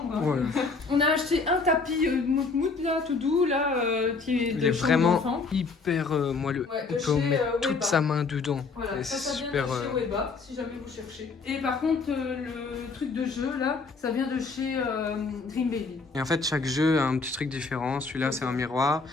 Ouais. On a acheté un tapis mout là, tout doux, là, qui est Il de est chambre vraiment d'enfant. hyper moelleux. Ouais, On de peut chez, mettre toute Weba. sa main dedans. Voilà, Et ça c'est vient super. de chez Weba, si jamais vous cherchez. Et par contre, le truc de jeu, là, ça vient de chez Dream Baby. Et en fait, chaque jeu a un petit truc différent. Celui-là, c'est un miroir.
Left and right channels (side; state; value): right; quieter; 4.4 dB